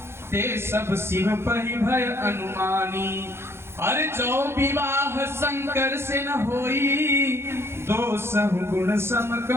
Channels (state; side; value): late; left; 0.12 ms